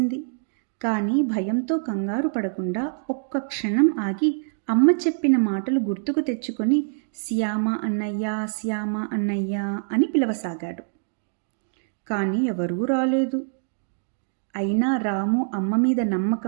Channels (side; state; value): left; silent; digital silence